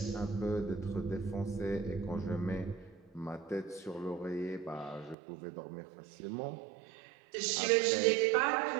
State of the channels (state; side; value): drops out; left; at 5.2 s